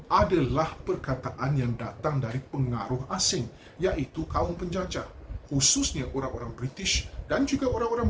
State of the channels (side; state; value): both; identical; correlation 1.00